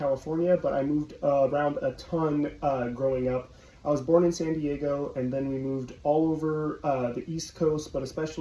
but I moved around a ton growing up. I was born in San Diego, and then we moved all over the East Coast, but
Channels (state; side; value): identical; both; correlation 1.00